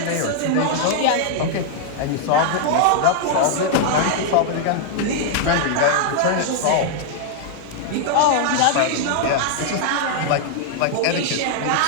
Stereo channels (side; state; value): both; different; correlation -0.01